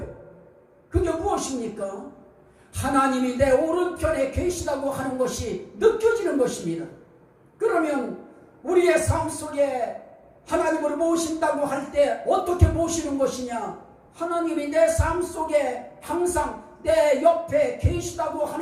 그게 무엇입니까? 하나님이 내 오른편에 계시다고 하는 것이 느껴지는 것입니다. 그러면 우리의 삶 속에 하나님을 모신다고 할 때 어떻게 모시는 것이냐? 하나님이 내 삶 속에 항상 내 옆에 계시다고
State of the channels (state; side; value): identical; both; correlation 1.00